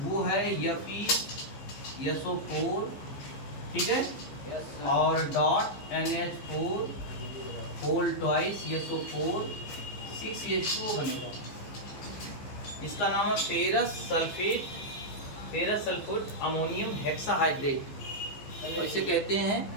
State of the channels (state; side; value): late; right; 15 ms